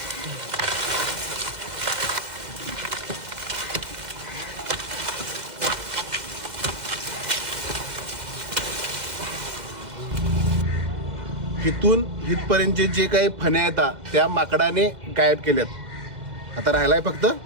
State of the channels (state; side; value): late; left; 2.1 ms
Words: हिथून हितपर्यंतचे जे काही फण्या येतात त्या माकडाने गायब केल्यात. आता राहिलाय फक्त